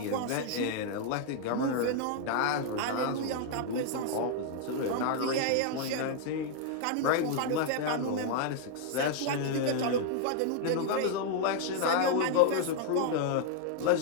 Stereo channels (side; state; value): both; different; correlation 0.00